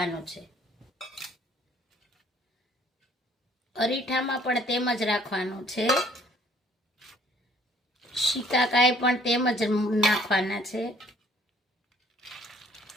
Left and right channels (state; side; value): normal; both; correlation 0.60